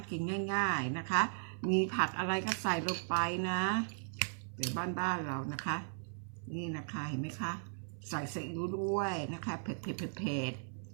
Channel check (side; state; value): left; silent; 53 dB below the other